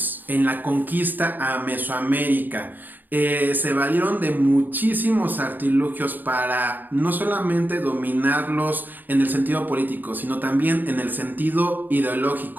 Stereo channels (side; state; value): left; late; 0.087 ms